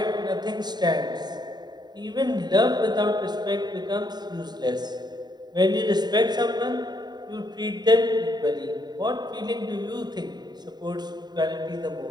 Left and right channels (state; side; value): late; left; 0.20 ms